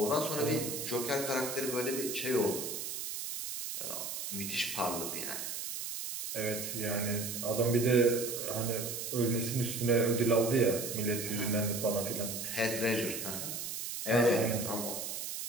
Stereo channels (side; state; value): right; noise; hiss, 5 dB below the sound